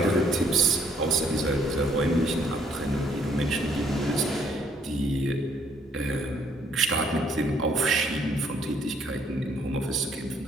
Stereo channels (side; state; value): both; normal; correlation 0.65